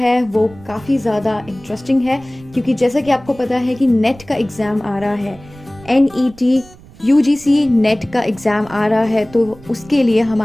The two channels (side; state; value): right; noise; rumble, 22 dB below the sound